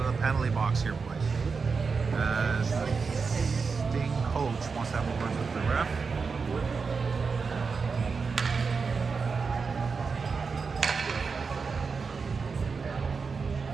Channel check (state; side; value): quieter; left; 5.0 dB